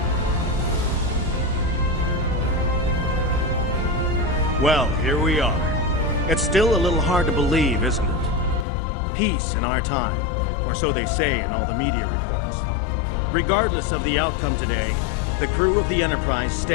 Well, here we are. It's still a little hard to believe, isn't it? Peace in our time, or so they say in all the media reports. Regardless of the outcome today, the crew of the Enterprise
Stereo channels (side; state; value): right; drops out; at 8.7 s